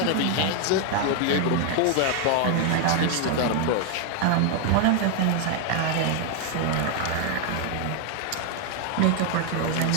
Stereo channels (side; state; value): both; different; correlation 0.00